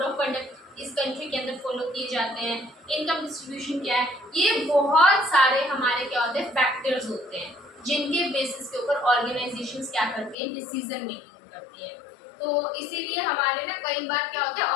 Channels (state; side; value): drops out; right; at 10.4 s